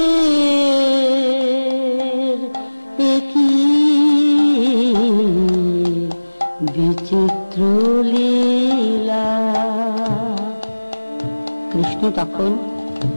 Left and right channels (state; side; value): inverted; both; correlation -1.00